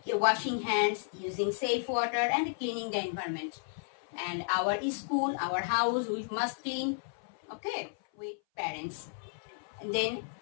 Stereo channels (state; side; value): silent; right; 56 dB below the other